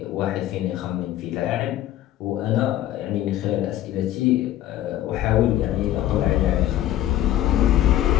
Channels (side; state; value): right; quieter; 13.2 dB